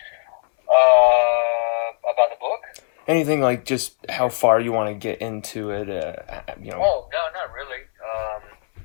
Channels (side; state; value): right; silent; 65 dB below the other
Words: About the book? Anything like just how far you want to get into it? You know. Oh, no, not really.